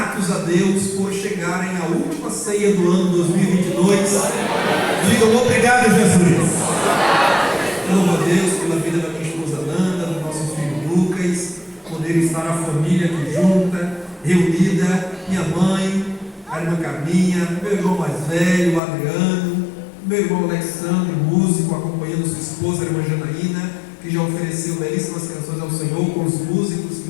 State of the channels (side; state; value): right; drops out; at 18.8 s